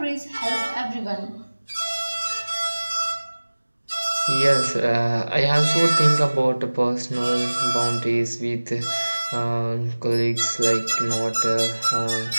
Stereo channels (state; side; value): inverted; both; correlation -1.00